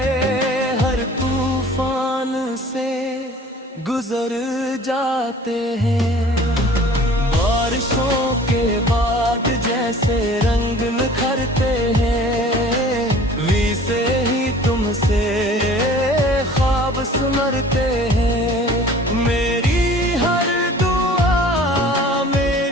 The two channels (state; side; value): normal; both; correlation 0.47